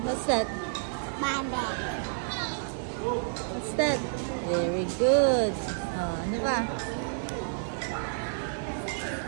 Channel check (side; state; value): left; silent; digital silence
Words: What's that? Bambi. What's that? Very good. Oh, ano ba?